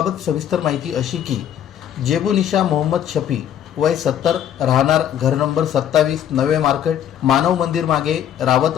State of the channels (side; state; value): right; quieter; 10.0 dB